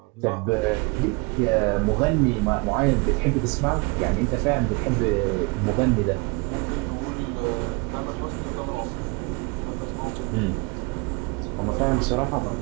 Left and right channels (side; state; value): left; quieter; 28.7 dB